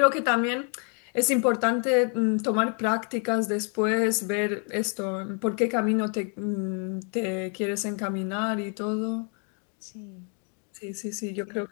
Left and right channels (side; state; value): right; quieter; 39.6 dB